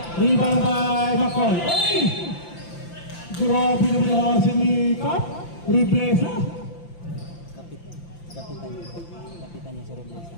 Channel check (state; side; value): late; right; 5.8 ms